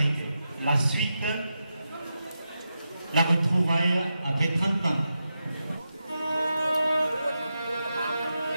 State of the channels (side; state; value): both; inverted; correlation -0.88